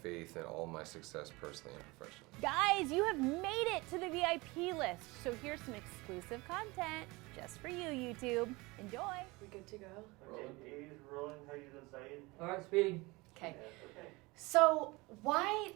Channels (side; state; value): left; quieter; 23.5 dB